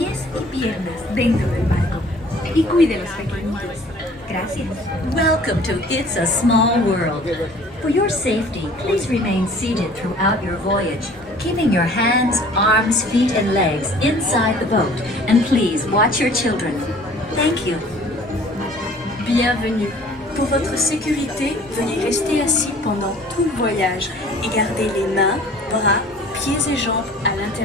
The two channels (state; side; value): normal; both; correlation 0.51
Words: y piernas dentro del barco. Y cuide a los pequeñitos. Gracias. Welcome to It's a Small World. For your safety, please remain seated throughout your voyage, keeping your hands, arms, feet, and legs inside the boat. And please watch your children. Thank you. Bienvenue. Pour votre sécurité, veuillez rester assis pendant tout le voyage et garder les mains, bras, pieds et jambes à